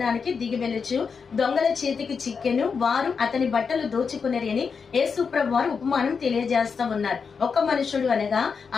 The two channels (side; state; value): right; quieter; 5.6 dB